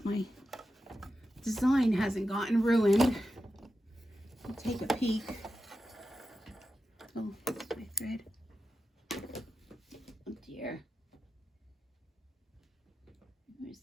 my design hasn't gotten ruined. I'll take a peek. Oh, that's my thread. Oh dear. Where's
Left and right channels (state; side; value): normal; both; correlation 0.90